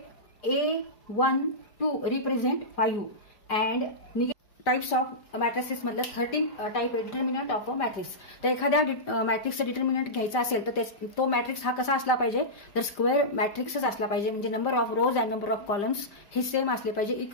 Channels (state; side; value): late; right; 5.0 ms